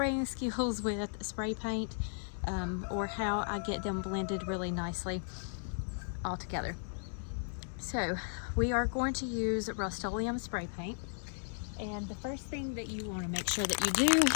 skills with spray paint, or how I get them blended really nicely all together. So we are going to use Rust-Oleum spray paint, and the first thing that you want to make sure that you do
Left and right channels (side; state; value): right; silent; digital silence